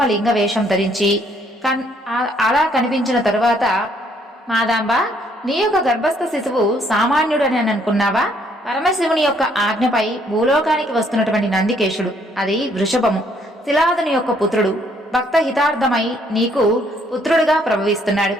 లింగ వేషం ధరించి అలా కనిపించిన తరువాత, మాదాంబ నీ యొక్క గర్భస్థ శిశువు సామాన్యుడని అనుకున్నావా? పరమశివుని యొక్క ఆజ్ఞపై భూలోకానికి వస్తున్నటువంటి నందికేశుడు, అది వృషభము, శిలాదుని యొక్క పుత్రుడు, భక్త హితార్థమై నీకు పుత్రుడుగా ప్రభవిస్తున్నాడు.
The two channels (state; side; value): normal; both; correlation 0.67